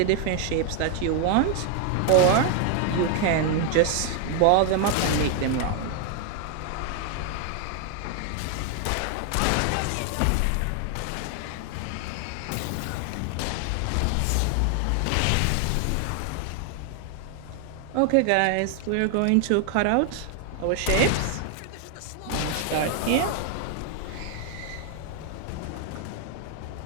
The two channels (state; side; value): different; both; correlation 0.00